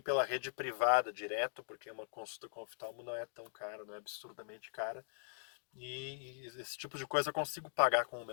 rede privada direto, porque uma consulta com oftalmo não é tão cara, não é absurdamente cara. E esse tipo de coisa eu consigo pagar com o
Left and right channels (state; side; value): silent; right; digital silence